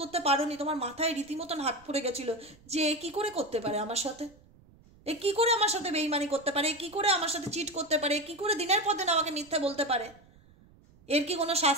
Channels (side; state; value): right; noise; rumble, 27 dB below the sound